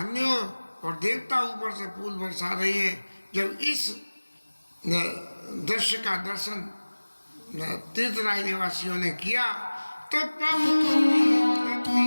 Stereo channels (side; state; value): both; inverted; correlation -1.00